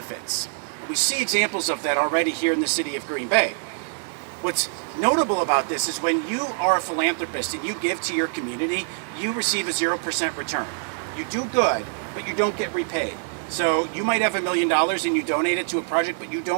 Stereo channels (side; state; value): left; silent; 62 dB below the other